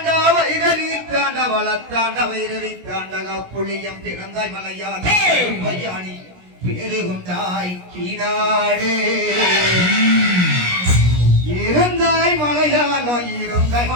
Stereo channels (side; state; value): left; late; 17 ms